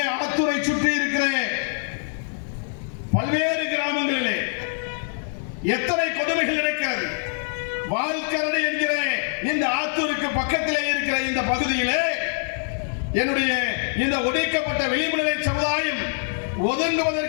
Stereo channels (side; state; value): right; silent; 62 dB below the other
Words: ஆத்தூரை சுற்றி இருக்கிற பல்வேறு கிராமங்களிலே எத்தனை கொடுமைகள் இருக்கிறது. வாழ்கரடு என்கிற இந்த ஆத்தூருக்கு பக்கத்திலே இருக்கிற இந்த பகுதியிலே என்னுடைய இந்த ஒடுக்கப்பட்ட விளிம்பு நிலை சமுதாயம்